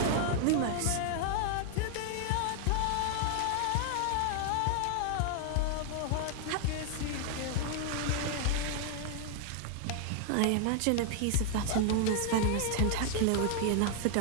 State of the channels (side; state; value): both; different; correlation 0.00